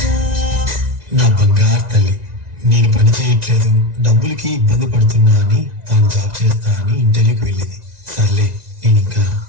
నా బంగారు తల్లి, నేను పని చేయట్లేదు, డబ్బులకి ఇబ్బంది పడుతున్నా అని తాను జాబ్ చేస్తా అని ఇంటర్వ్యూకి వెళ్ళింది. సర్లే, నేను ఇంకా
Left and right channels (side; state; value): left; late; 1.9 ms